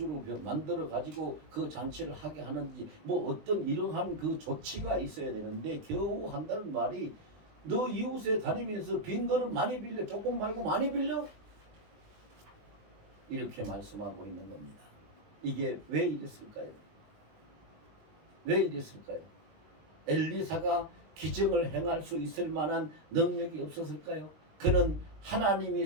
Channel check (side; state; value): left; late; 19 ms